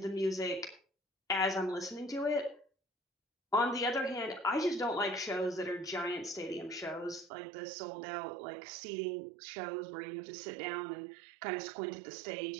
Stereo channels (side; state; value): left; drops out; at 7.3 s